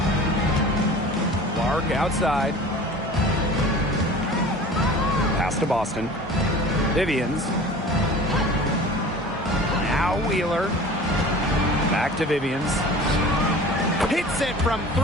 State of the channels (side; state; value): both; normal; correlation 0.41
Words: Clark outside. Pass to Boston. Vivians. Now Wheeler. Back to Vivians. Hits it from